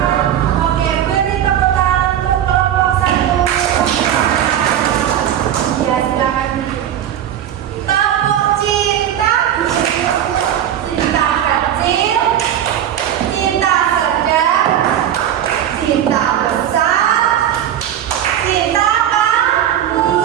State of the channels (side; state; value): left; quieter; 10.6 dB